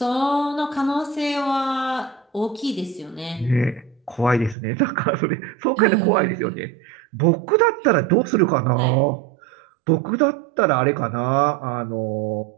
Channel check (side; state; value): left; drops out; at 4.5 s